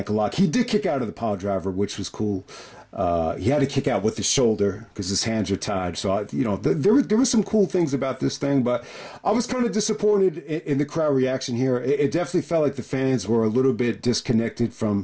lock. He did kick out of the pile driver, which was cool. He had to kick out with his shoulder because his hands are tied. So, you know, there were some cool things about this thing, but I was kind of disappointed in the crowd reaction here. It definitely felt like the fans were a little bit disconnected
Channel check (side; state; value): both; identical; correlation 1.00